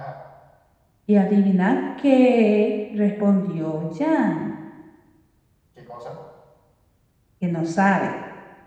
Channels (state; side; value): identical; both; correlation 1.00